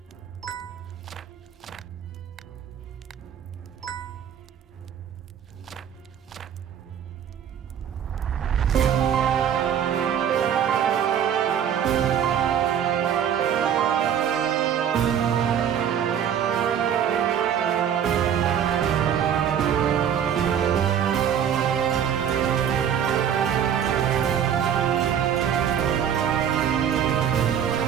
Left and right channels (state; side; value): quieter; left; 8.9 dB